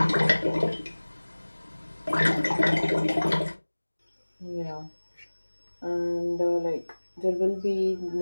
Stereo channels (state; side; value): inverted; both; correlation -1.00